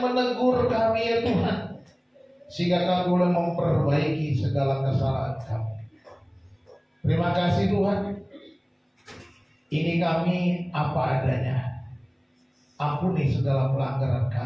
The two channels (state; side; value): identical; both; correlation 1.00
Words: menegur kami ya Tuhan, sehingga kami boleh memperbaiki segala kesalahan kami. Terima kasih Tuhan. Ini kami apa adanya. Ampuni segala pelanggaran